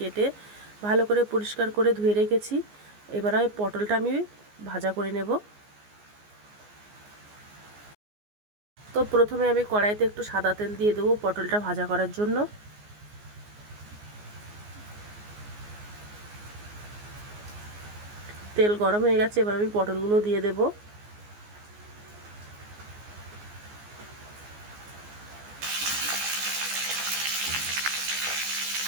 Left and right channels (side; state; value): left; late; 14 ms